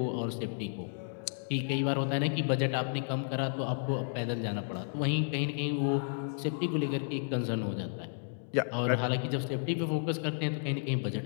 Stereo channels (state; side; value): silent; right; digital silence